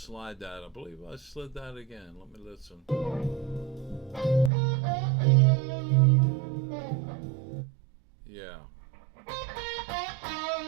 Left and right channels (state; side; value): drops out; left; at 4.5 s